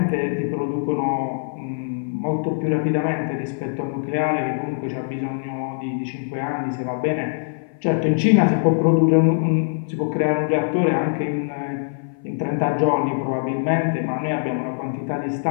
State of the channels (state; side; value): silent; right; 57 dB below the other